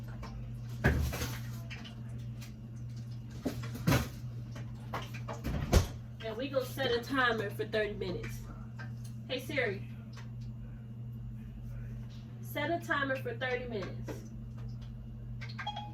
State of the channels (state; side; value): identical; both; correlation 1.00